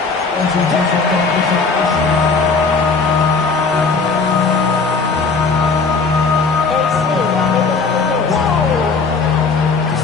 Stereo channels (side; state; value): right; quieter; 4.5 dB